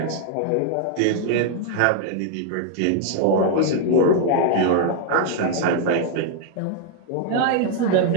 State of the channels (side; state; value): both; different; correlation 0.00